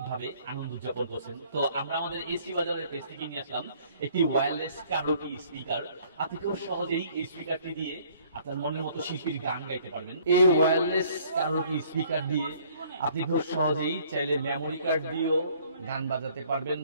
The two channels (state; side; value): inverted; both; correlation -0.59